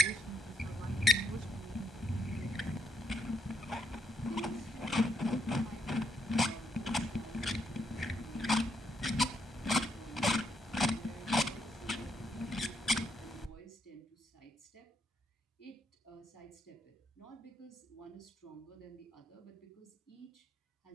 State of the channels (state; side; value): normal; both; correlation 0.76